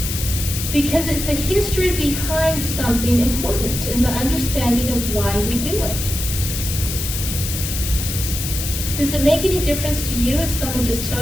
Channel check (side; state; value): left; noise; hiss, 5 dB below the sound